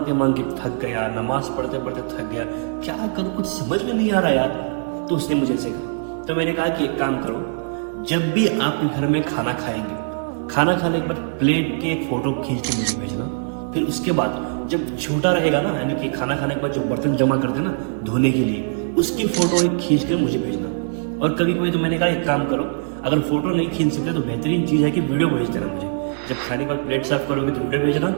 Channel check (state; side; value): silent; left; 64 dB below the other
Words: مانگ کے تھک گیا، نماز پڑھتے پڑھتے تھک گیا، کیا کروں کچھ سمجھ میں نہیں آ رہا یار۔ تو اس نے مجھے ایسے کہا، تو میں نے کہا کہ ایک کام کرو، جب بھی آپ گھر میں کھانا کھائیں گے، کھانا کھانے کے بعد پلیٹ کی ایک فوٹو کھینچ کے مجھے بھیجنا، پھر اس کے بعد جب چھوٹا رہے گا نا، یعنی کہ کھانا کھانے کے بعد جو برتن جمع کرتے ہیں نا دھونے کے لیے، اس کی فوٹو ایک کھینچ کر مجھے بھیجنا۔ اور کبھی کبھی تو میں نے کہا ایک کام کرو، اگر فوٹو نہیں کھینچ سکتے تو بہترین چیز ہے کہ ویڈیو بھیج دینا مجھے، جب کھانے کے بعد پلیٹ صاف کرو گے تو ویڈیو بھیجنا،